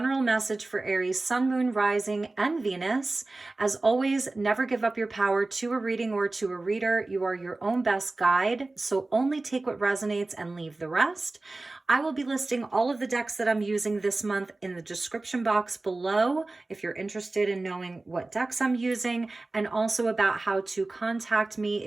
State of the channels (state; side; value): quieter; left; 3.1 dB